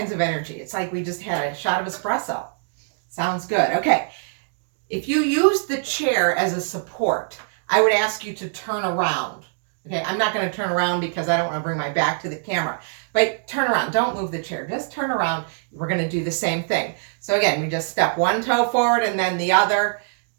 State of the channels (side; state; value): left; silent; digital silence